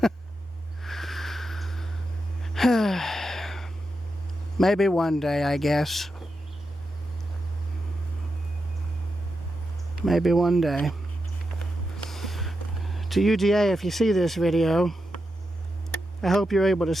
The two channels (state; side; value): normal; both; correlation 0.87